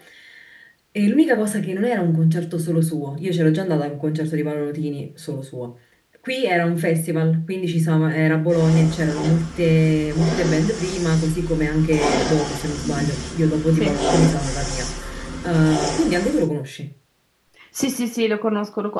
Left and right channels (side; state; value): both; identical; correlation 1.00